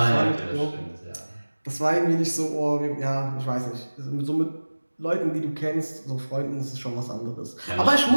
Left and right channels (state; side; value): inverted; both; correlation -1.00